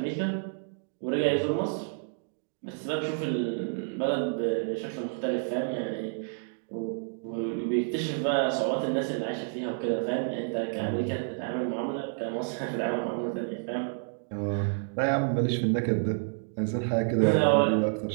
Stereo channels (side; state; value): left; silent; digital silence